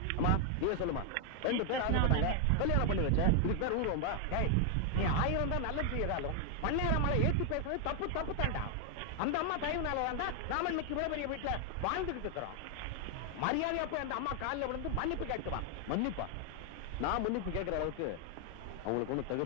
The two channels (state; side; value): different; both; correlation 0.00